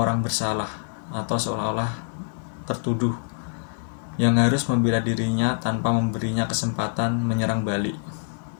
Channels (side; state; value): right; silent; digital silence